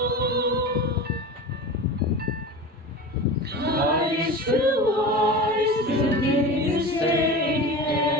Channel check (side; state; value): both; normal; correlation 0.30